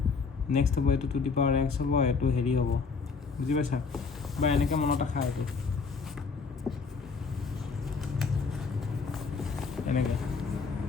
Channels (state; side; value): quieter; right; 4.8 dB